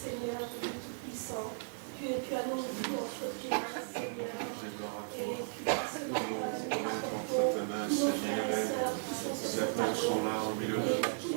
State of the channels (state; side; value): silent; left; 54 dB below the other